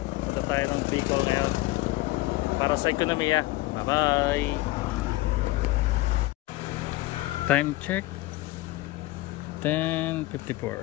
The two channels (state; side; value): quieter; right; 19.0 dB